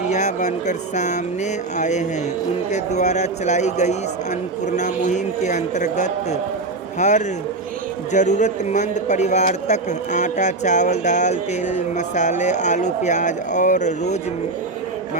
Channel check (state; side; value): quieter; left; 3.3 dB